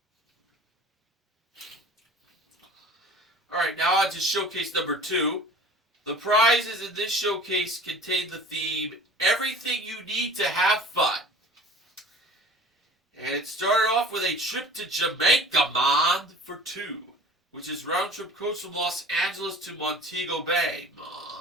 Alright, now on to showcase number 2. The prizes in this showcase contain the theme, everything you need to have fun. And it started off with a trip to Jamaica, man, for 2, which is round trip coach from Los Angeles to Montego Bay,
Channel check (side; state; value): both; normal; correlation 0.43